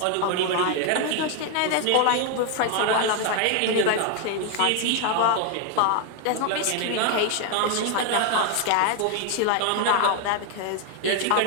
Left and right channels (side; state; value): both; different; correlation 0.01